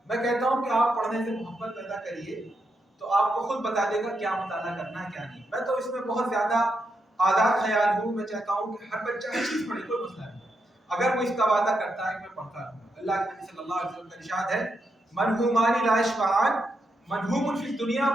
मैं कहता हूं कि आप पढ़ने से मोहब्बत पैदा करिए तो आपको खुद बता देगा क्या मुताला करना है क्या नहीं। मैं तो इसमें बहुत ज्यादा आज़ाद ख्याल हूँ, मैं चाहता हूँ कि हर बच्चा हर चीज पढ़े, कोई मसला नहीं, अगर वो इसका वादा करता है कि मैं पढ़ता रहूंगा। अल्लाह के नबी सल्लल्लाहु अलैहि वसल्लम का इरशाद है, मनहूमानी ला यशबान मनहूमुन फिल दुनिया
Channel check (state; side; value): normal; both; correlation 0.83